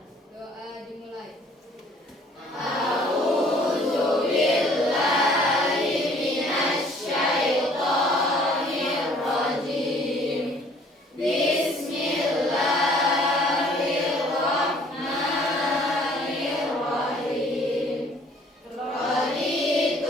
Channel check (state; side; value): normal; both; correlation 0.57